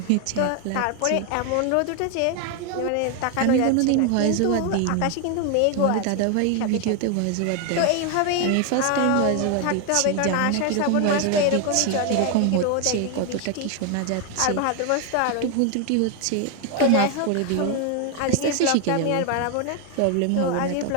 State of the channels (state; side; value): different; both; correlation 0.01